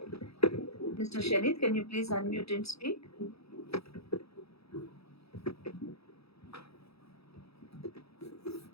Mr. Shanid, can you please unmute and speak?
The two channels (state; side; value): late; right; 0.77 ms